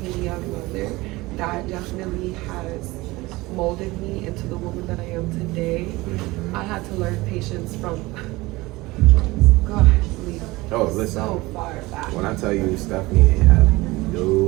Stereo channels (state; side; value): quieter; left; 20.8 dB